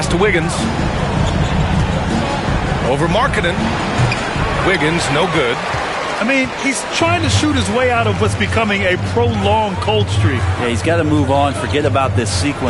to Wiggins. Over Markkanen. Wiggins, no good. I mean, he's trying to shoot his way out of what's becoming a prolonged cold streak. Yeah, he's got to move on, forget about this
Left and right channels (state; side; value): identical; both; correlation 1.00